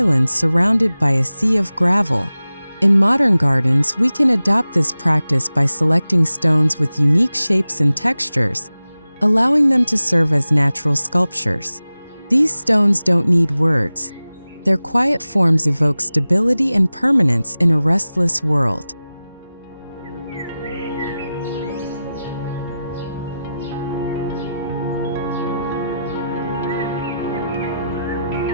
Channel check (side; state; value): both; inverted; correlation -0.94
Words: surrounded by a sea of gravel. In modern gardens, we can adopt this practice by selecting stones with unique shapes and textures, allowing them to serve as natural sculptures. These stones don't need words. Their quiet forms evoke stability and permanence in a restless world.